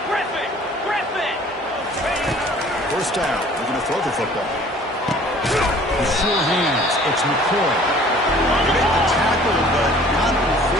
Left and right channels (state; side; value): normal; both; correlation 0.51